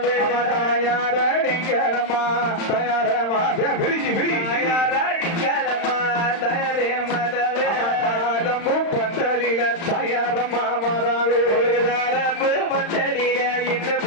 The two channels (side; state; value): right; late; 35 ms